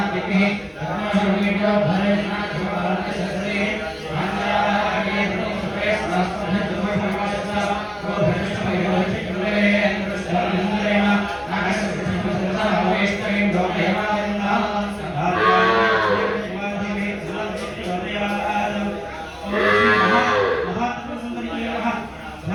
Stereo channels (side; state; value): both; identical; correlation 1.00